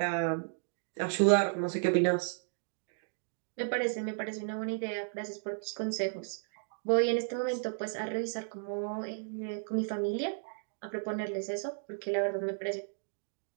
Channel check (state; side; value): silent; left; digital silence